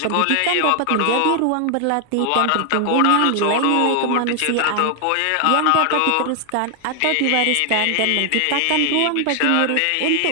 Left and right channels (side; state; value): both; different; correlation 0.00